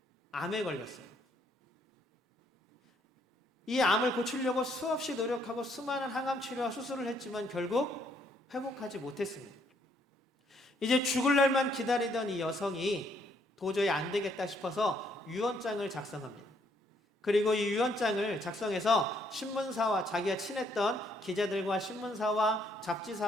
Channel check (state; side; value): normal; both; correlation 0.70